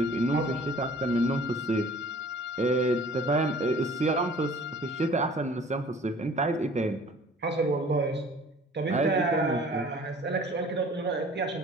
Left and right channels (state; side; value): normal; both; correlation 0.49